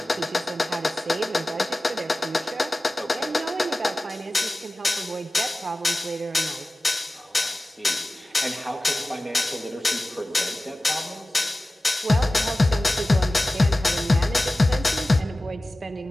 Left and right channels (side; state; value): both; normal; correlation 0.96